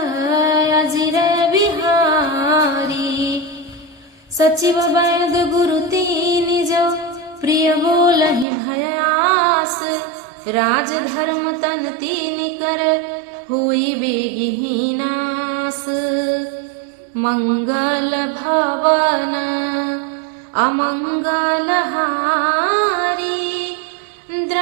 अजिर बिहारी। सचिव वैद गुरु तीन जो प्रिय बोलहि भयास, राज धर्म तन तीन कर हुई बेगिनास। मंगल भवन अमंगल हारी,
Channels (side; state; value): left; drops out; at 8.5 s